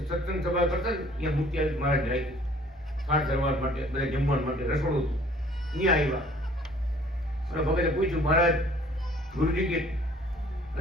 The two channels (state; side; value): normal; both; correlation 0.55